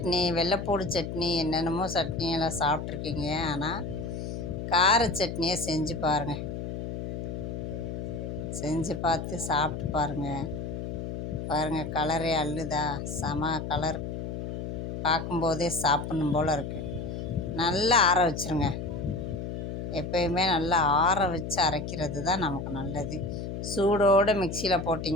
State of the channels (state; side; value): noise; left; hum, 5 dB below the sound